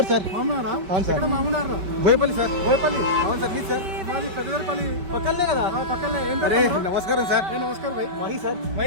सर। మామూనారా? అవును సార్. ఇక్కడ మామూనారా? బోయపల్లి సార్. బోయపల్లి. అవును సార్ మీ సార్. మాది పెద్దపల్లి పక్కనే కదా. పక్కనే. ఏం అరే పేరు తమ్ముడు? నమస్కారం సార్. ఏ నమస్కారం భాయ్. మహి సార్.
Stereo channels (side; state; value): left; late; 5.2 ms